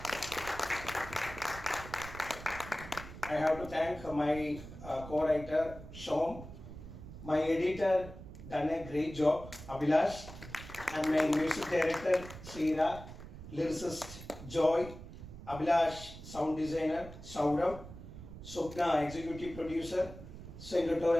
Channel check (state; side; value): noise; right; rumble, 13 dB below the sound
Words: I have to thank my co-writer, Shom, my editor, done a great job, Abhilash, and my music director, Srira, lyricist, Joy, Abhilash, sound designer, Saurav, Swapna, executive producer,